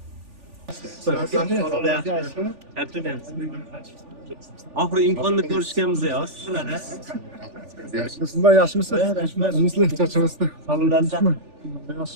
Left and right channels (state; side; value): late; left; 3.4 ms